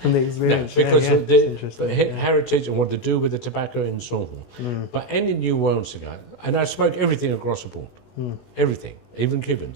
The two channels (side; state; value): right; late; 16 ms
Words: from the experience. No, because of the interesting. heritage and what they do with the tobacco and so on. But any New World cigar, and I smoke everything across the board. Everything, even